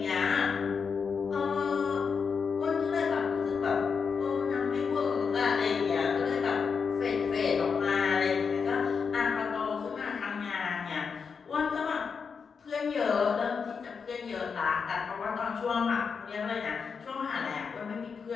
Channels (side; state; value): right; quieter; 5.8 dB